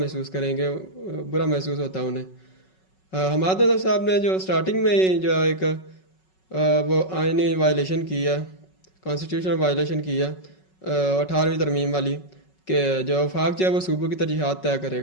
करेंगे, बुरा महसूस होता है उन्हें। हमाद साहब ने जो स्टार्टिंग में ही जो एक वो आइनी वायलेशन की है, कॉन्स्टिट्यूशनल वायलेशन की है 18वीं तरमीम वाली, कि जो वफाक जो है वो सूबों की तरजीहात तय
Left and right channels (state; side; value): late; right; 5.4 ms